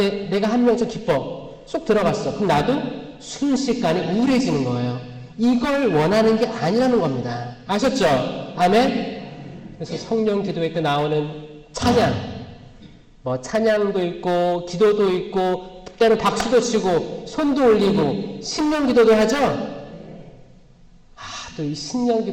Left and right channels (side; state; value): both; identical; correlation 1.00